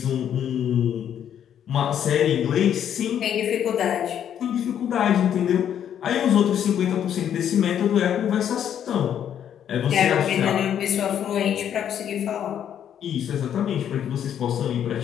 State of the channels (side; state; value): right; quieter; 9.5 dB